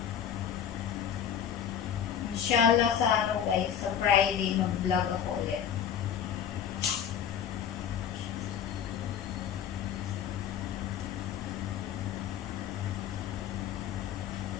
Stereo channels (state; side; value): quieter; right; 8.7 dB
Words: Inshallah sa ano guys, sa Friday mag-vlog ako ulit.